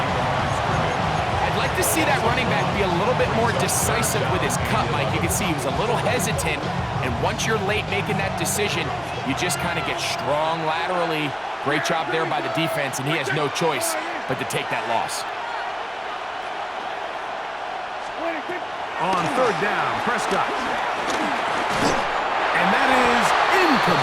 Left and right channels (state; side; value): identical; both; correlation 1.00